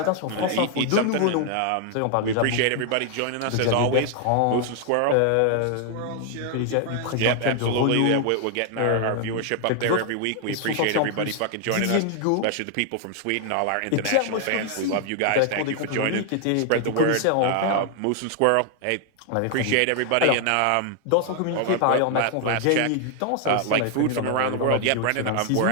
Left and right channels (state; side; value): different; both; correlation 0.00